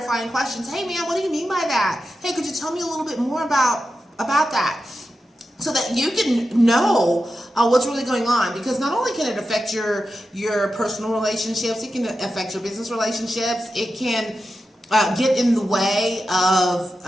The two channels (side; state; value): both; normal; correlation 0.90